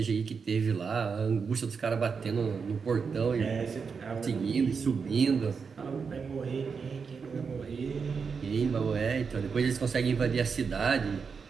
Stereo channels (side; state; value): left; quieter; 5.6 dB